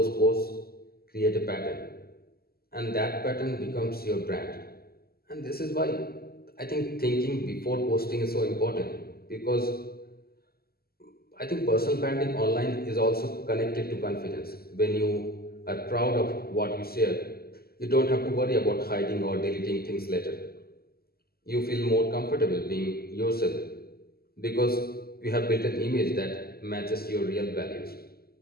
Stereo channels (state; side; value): late; right; 0.45 ms